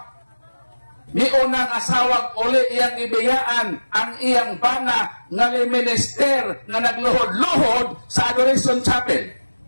niunang asawag uli iyang ibiyaan ang iyang bana nga minister nga nagluhod-luhod sa Adoration Chapel.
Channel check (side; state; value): both; inverted; correlation -1.00